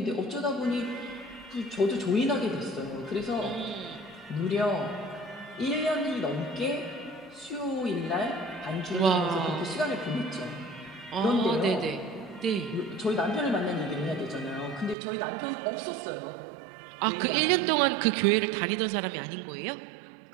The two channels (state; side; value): drops out; left; at 15.0 s